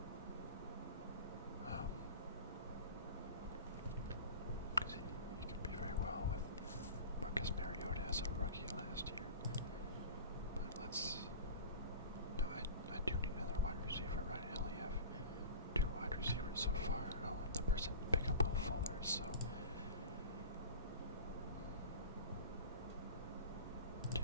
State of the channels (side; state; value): both; inverted; correlation -0.37